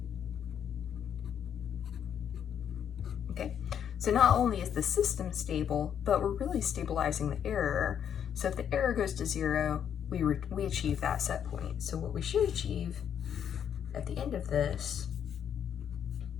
Okay, so not only is the system stable, but we're really stabilizing the error. So if the error goes to 0, we achieve that set point. So what we should achieve at the end of this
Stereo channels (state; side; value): quieter; right; 8.8 dB